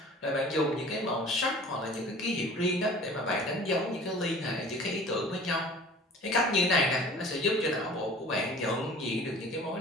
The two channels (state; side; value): normal; both; correlation 0.45